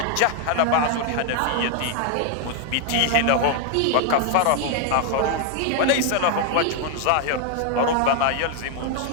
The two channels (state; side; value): different; both; correlation 0.00